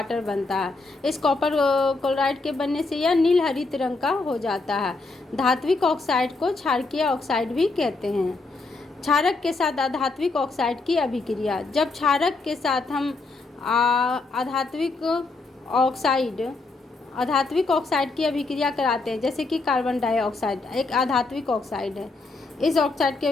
बनता है। इस कॉपर क्लोराइड के बनने से यह नील हरित रंग का हो जाता है। धात्विक ऑक्साइड को क्षारकीय ऑक्साइड भी कहते हैं। क्षारक के साथ अधात्विक ऑक्साइड की अभिक्रिया। जब क्षारक के साथ हम अधात्विक ऑक्साइड की अभिक्रिया कराते हैं, जैसे कि कार्बन डाइऑक्साइड एक अधात्विक ऑक्साइड है। इस ऑक्साइड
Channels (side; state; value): right; quieter; 3.6 dB